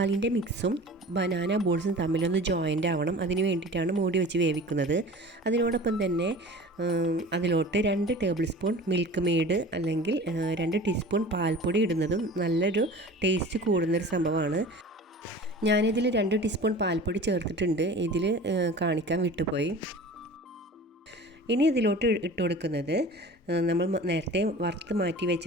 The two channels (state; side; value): normal; both; correlation 0.40